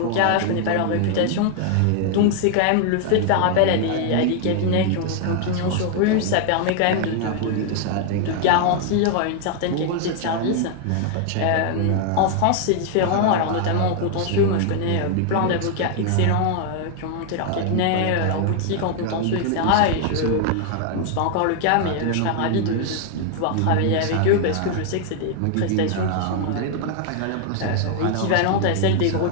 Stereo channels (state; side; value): different; both; correlation 0.00